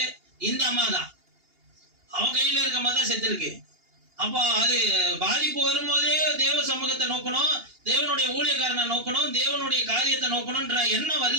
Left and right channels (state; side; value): late; left; 2.8 ms